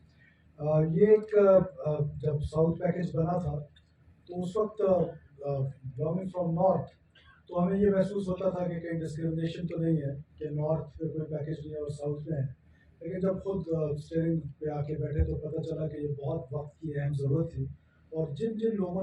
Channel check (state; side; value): identical; both; correlation 1.00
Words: یہ ایک جب ساؤتھ پیکیج بنا تھا تو اس وقت بلانگنگ فرام نارتھ تو ہمیں یہ محسوس ہوتا تھا کہ کہیں ڈسکرمنیشن تو نہیں ہے کہ نارتھ پہ کوئی پیکیج نہیں ہے اور ساؤتھ میں ہے. لیکن جب خود اسٹیئرنگ پہ آ کے بیٹھے تو پتہ چلا کہ یہ بہت وقت کی اہم ضرورت تھی. اور جن جن